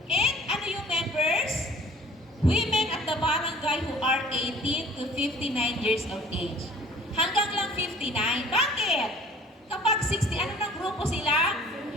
And ano yung members? Women at the barangay who are 18 to 59 years of age. Hanggang lang 59. Bakit? Kapag 60, ano ng grupo sila?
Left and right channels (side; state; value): both; normal; correlation 0.51